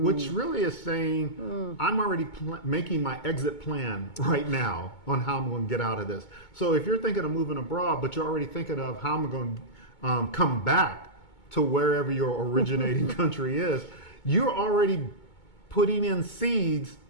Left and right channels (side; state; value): right; late; 2.2 ms